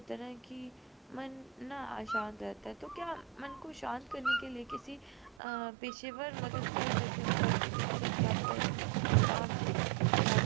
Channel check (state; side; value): drops out; left; at 5.4 s